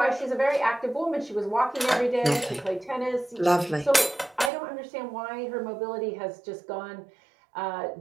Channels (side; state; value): left; drops out; at 4.5 s